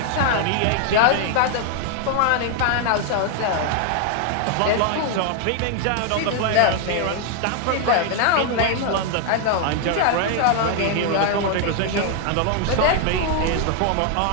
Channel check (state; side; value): different; both; correlation 0.00